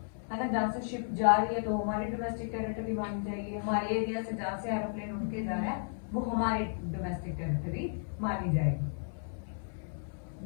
है ना, जहाँ से शिप जा रही है तो हमारी डोमेस्टिक टेरिटरी मानी जाएगी। हमारे एरिया से जहाँ से एरोप्लेन उड़ के जा रहा है वो हमारी डोमेस्टिक टेरिटरी मानी जाएगी,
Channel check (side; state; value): right; silent; 55 dB below the other